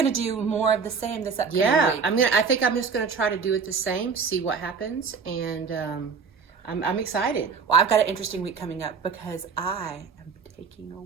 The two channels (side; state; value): left; quieter; 5.6 dB